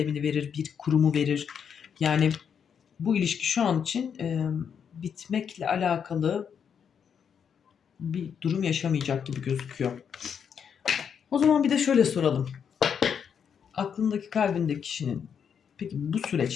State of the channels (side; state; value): right; quieter; 7.4 dB